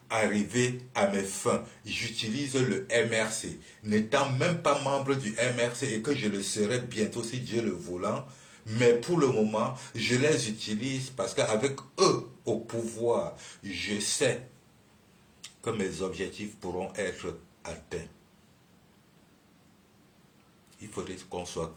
arriver à mes fins. J'utilise le MRC. N'étant même pas membre du MRC et que je le serai bientôt si Dieu le voulant, mais pour le moment, je les utilise parce qu'avec eux au pouvoir, je sais que mes objectifs pourront être atteints. Il faudrait qu'on soit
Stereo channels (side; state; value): both; identical; correlation 1.00